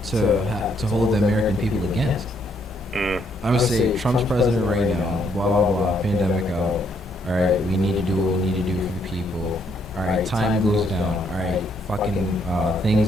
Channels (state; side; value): normal; both; correlation 0.71